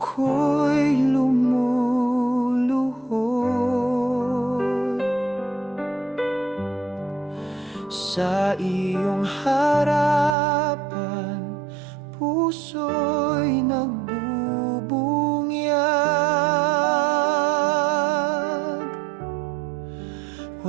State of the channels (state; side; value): drops out; left; at 10.4 s